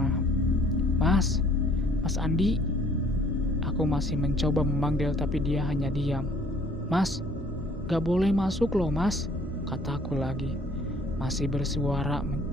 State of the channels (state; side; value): normal; both; correlation 0.58